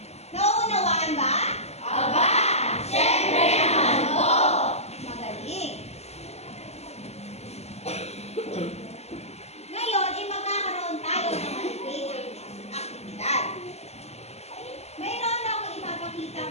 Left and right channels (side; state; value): right; late; 0.31 ms